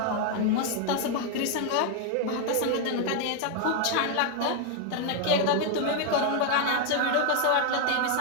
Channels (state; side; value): different; both; correlation 0.00